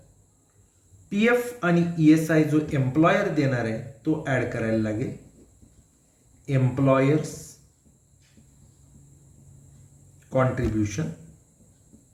PF आणि ESI जो एम्प्लॉयर देणार आहे तो ॲड करायला लागेल. एम्प्लॉयर्स कॉन्ट्रीब्युशन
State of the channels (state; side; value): identical; both; correlation 1.00